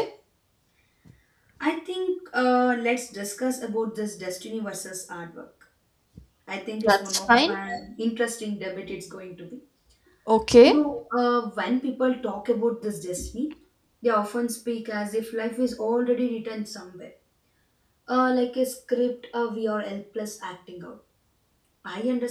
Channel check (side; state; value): both; identical; correlation 1.00